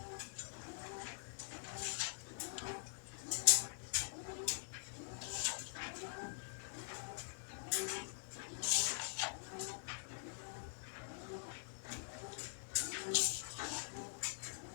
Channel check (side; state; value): right; silent; digital silence